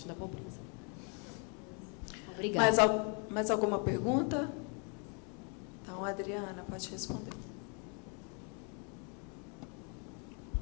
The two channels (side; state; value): right; quieter; 37.4 dB